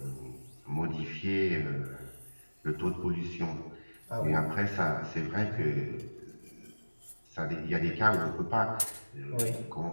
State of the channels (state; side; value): inverted; both; correlation -1.00